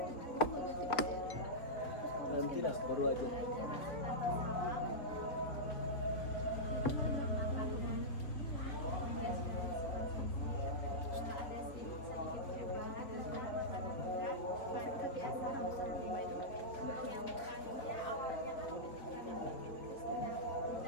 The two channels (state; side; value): late; right; 4.0 ms